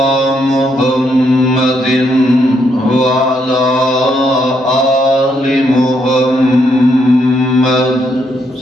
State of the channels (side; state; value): both; normal; correlation 0.76